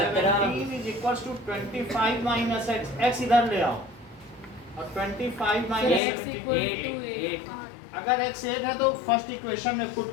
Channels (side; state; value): right; drops out; at 6.0 s